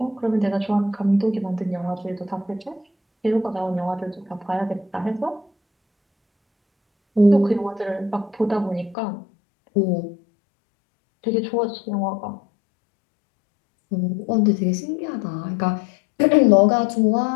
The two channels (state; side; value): drops out; right; at 9.0 s